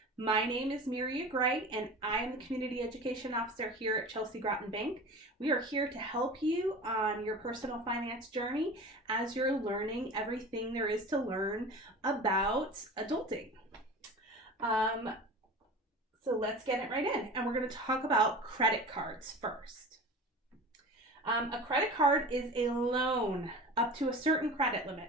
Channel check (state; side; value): normal; both; correlation 0.35